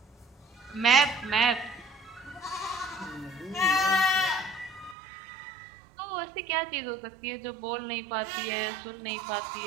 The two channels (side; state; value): left; drops out; at 5.0 s